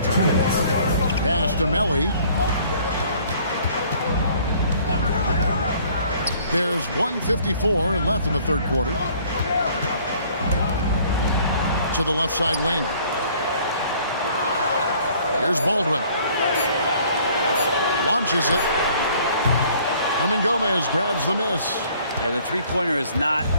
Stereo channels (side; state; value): both; inverted; correlation -0.57